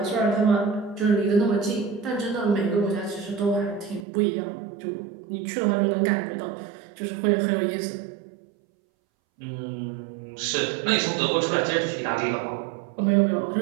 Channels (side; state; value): left; drops out; at 4.0 s